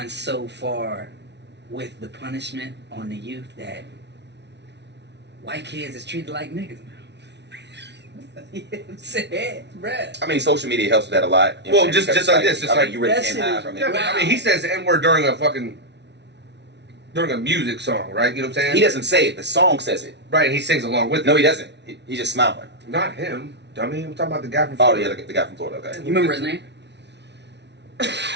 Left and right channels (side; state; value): left; late; 0.50 ms